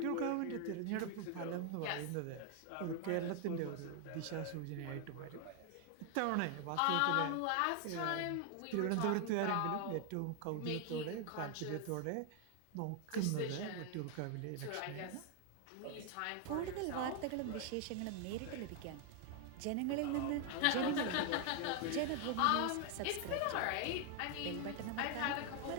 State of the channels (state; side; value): different; both; correlation 0.00